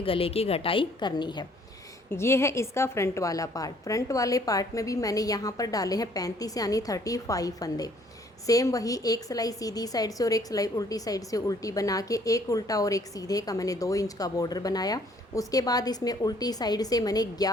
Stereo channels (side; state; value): both; normal; correlation 0.61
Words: गले की घटाई करनी है। ये है इसका फ्रंट वाला पार्ट। फ्रंट वाले पार्ट में भी मैंने यहाँ पर डाले हैं 35 यानी 35 फंदे। सेम वही, एक सिलाई सीधी साइड से और एक सिलाई उल्टी साइड से उल्टी बना के एक उल्टा और एक सीधे का मैंने 2 इंच का बॉर्डर बनाया। उसके बाद इसमें उल्टी साइड से मैंने